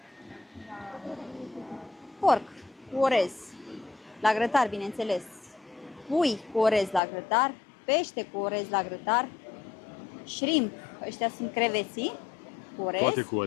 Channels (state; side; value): drops out; right; at 7.0 s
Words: Porc cu orez, la grătar, bineînțeles. Pui cu orez la grătar, pește cu orez la grătar, shrimp, ăștia sunt creveții cu orez. Toate cu